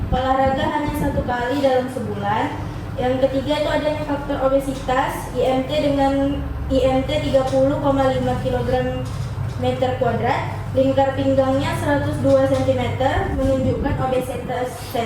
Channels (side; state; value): both; identical; correlation 1.00